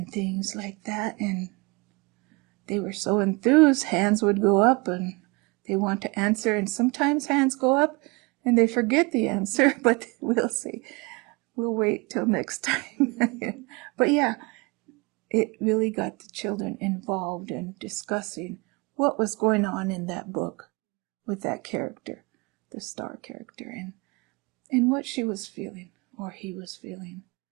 things like that, and they were so enthused, hands would go up and they want to answer, and sometimes hands go up and they forget the answer, but we'll see. We'll wait till next time. But yeah, it really got the children involved in discussing what was going on in that book with that character, the star character, and what she was feeling or he was feeling.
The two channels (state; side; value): quieter; left; 27.2 dB